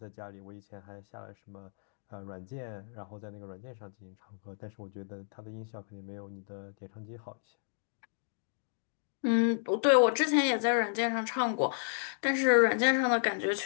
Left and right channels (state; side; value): silent; right; digital silence